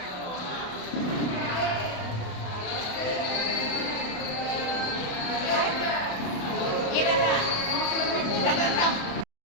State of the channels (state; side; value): late; right; 28 ms